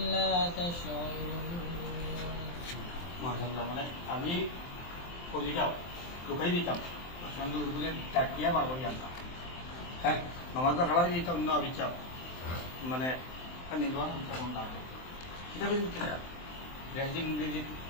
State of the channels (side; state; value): right; late; 23 ms